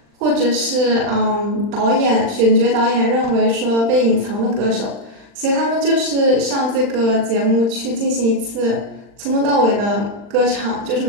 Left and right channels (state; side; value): late; left; 39 ms